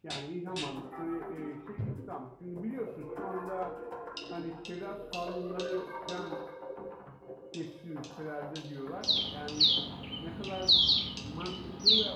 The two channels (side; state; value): both; identical; correlation 1.00